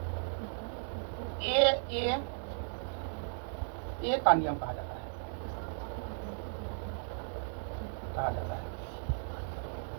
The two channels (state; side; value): silent; left; 54 dB below the other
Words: ए का नियम कहा जाता है।